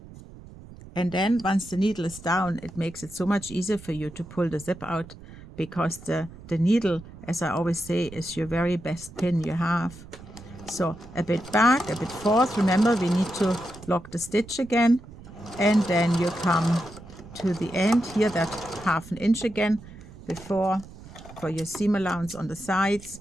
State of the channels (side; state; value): right; noise; rumble, 17 dB below the sound